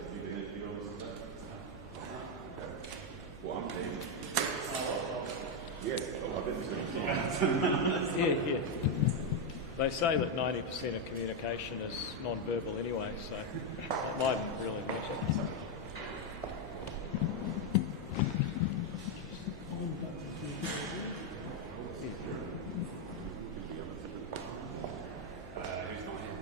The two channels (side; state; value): left; noise; hum, 18 dB below the sound